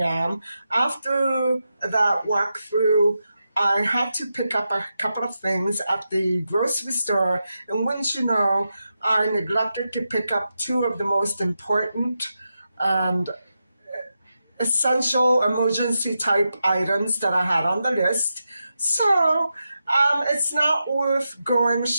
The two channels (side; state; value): both; inverted; correlation -0.88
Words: After that walkthrough, I had to pick up a couple of things at the grocery store, and wouldn't you know, I neglected to pick up two of the most important and essential emergency type items that I had on the list. So it's not worth going